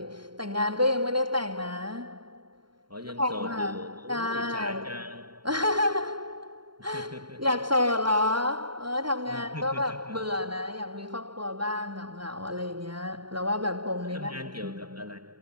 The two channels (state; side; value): late; left; 0.72 ms